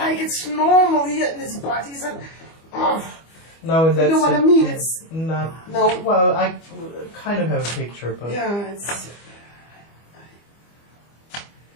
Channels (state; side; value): late; right; 25 ms